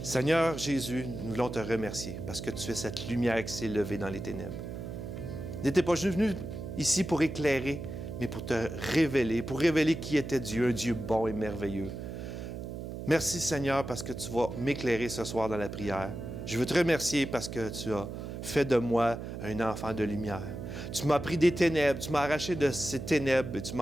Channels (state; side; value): noise; right; hum, 7 dB below the sound